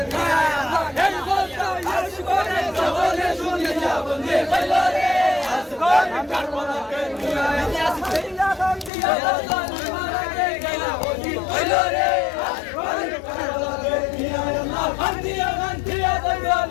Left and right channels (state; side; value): drops out; right; at 8.9 s